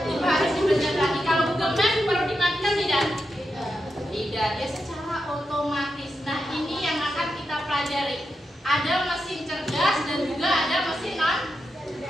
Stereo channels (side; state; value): both; normal; correlation 0.87